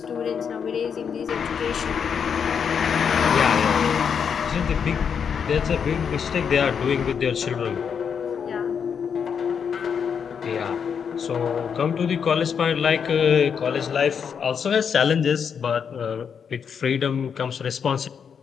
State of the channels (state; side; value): quieter; right; 7.0 dB